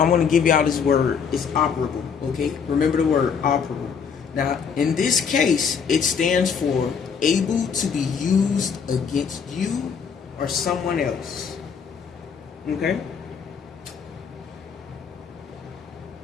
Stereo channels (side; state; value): right; quieter; 6.5 dB